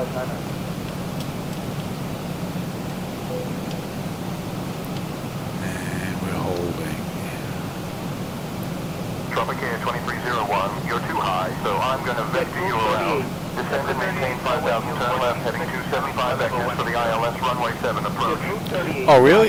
And we're holding. Tropic Air 2301, you're too high, so I'm going to vector you around. Descend and maintain 5,000, turn left, heading 275 vectors for the ILS runway 7 approach. Oh,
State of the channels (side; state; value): both; identical; correlation 1.00